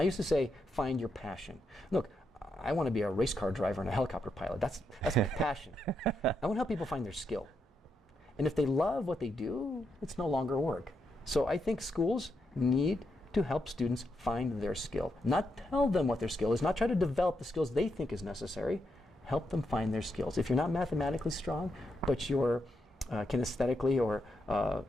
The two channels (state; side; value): normal; both; correlation 0.82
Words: used to say, find your passion. Look, I want to be a race car driver and a helicopter pilot. That's my passion. I want to help people find their skill. And if they love what they do, it's no longer work. So I think schools need to help students find their skill. Not tell them what their skill is, not try to develop the skills they think is necessary. Help them find their skills. If you're not mathematically strong, but you're kinesthetically or